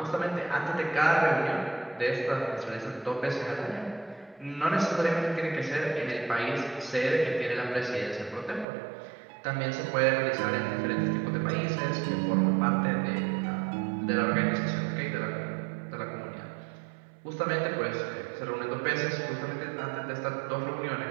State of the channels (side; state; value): left; drops out; at 8.7 s